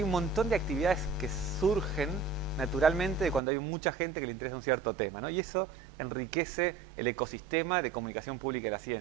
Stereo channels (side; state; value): left; drops out; at 3.4 s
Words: un montón de actividades que surgen naturalmente cuando hay mucha gente que le interesa un cierto tema, ¿no? Y eso enriquece el ecosistema de comunicación pública de la